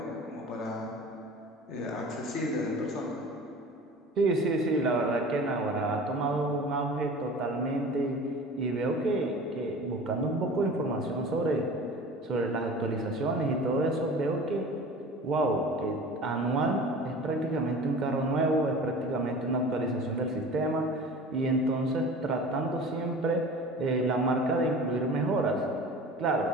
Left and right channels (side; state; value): both; normal; correlation 0.39